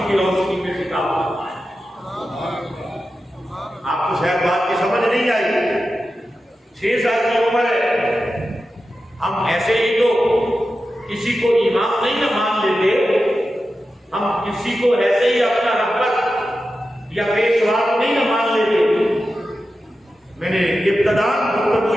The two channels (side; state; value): both; normal; correlation 0.92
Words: کی روشنی میں خطاب فرمایا۔ آپ کو شاید بات کی سمجھ نہیں آئی، 6 سال کی عمر ہے، ہم ایسے ہی تو کسی کو امام نہیں نہ مان لیتے، ہم کسی کو ایسے ہی اپنا رہبر یا پیشوا نہیں نہ مان لیتے۔ میں نے ابتداء گفتگو